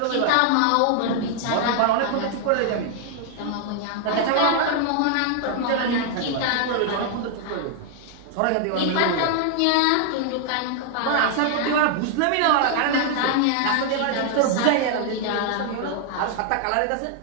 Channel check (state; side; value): different; both; correlation 0.00